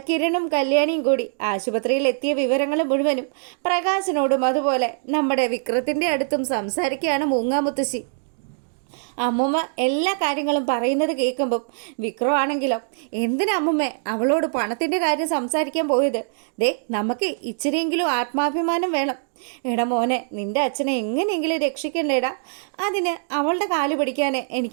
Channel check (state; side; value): silent; left; digital silence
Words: കിരണും കല്യാണിയും കൂടി ആശുപത്രിയിൽ എത്തിയ വിവരങ്ങൾ മുഴുവനും പ്രകാശനോടും അതുപോലെ നമ്മുടെ വിക്രത്തിൻ്റെ അടുത്തും സംസാരിക്കുകയാണ് മൂങ്ങാമുത്തശ്ശി. അമ്മൂമ്മ എല്ലാ കാര്യങ്ങളും പറയുന്നത് കേൾക്കുമ്പം വിക്രം ആണെങ്കിലോ, എന്തിനാ അമ്മമ്മേ അവളോട് പണത്തിൻ്റെ കാര്യം സംസാരിക്കാൻ പോയത്? ദേ നമുക്ക് ഇച്ചിരിയെങ്കിലും ആത്മാഭിമാനം വേണം. എടാ മോനെ, നിൻ്റെ അച്ഛനെ എങ്ങനെയെങ്കിലും രക്ഷിക്കണ്ടേടാ. അതിന് അവളുടെ കാല് പിടിക്കാനേ